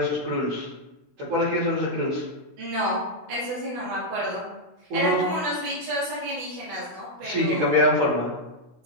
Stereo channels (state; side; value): late; left; 16 ms